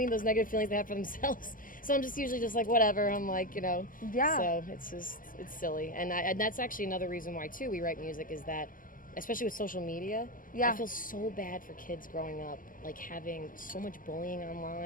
Those negative feelings they have for themselves. So I'm just usually just like, whatever. I'm like, Yeah. So it's silly. And that's actually another reason why too we write music is that, especially with social media, Yeah. I feel so bad for kids growing up, like having so much bullying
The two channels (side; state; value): right; late; 0.40 ms